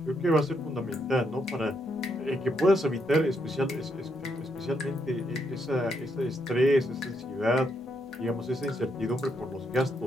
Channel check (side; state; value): both; normal; correlation 0.78